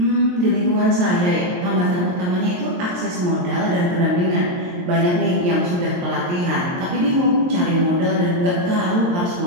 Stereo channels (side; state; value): left; late; 23 ms